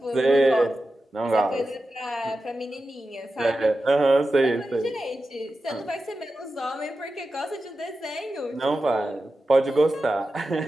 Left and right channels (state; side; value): normal; both; correlation 0.92